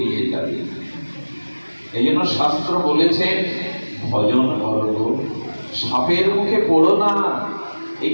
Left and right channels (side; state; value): both; inverted; correlation -1.00